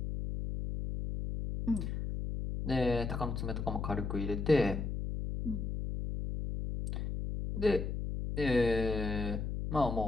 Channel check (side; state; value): left; noise; hum, 3 dB below the sound